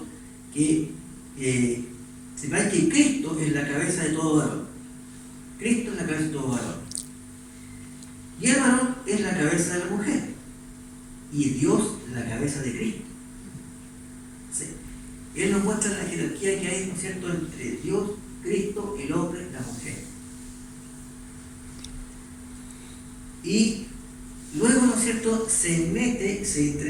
que sepáis que Cristo es la cabeza de todo varón. Cristo es la cabeza de todo varón. Y el varón es la cabeza de la mujer. Y Dios la cabeza de Cristo. ¿Sí? Él nos muestra la jerarquía que hay, ¿no es cierto?, entre Dios, Cristo, el hombre, la mujer. Y luego, ¿no es cierto?, se entremete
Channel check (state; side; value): identical; both; correlation 1.00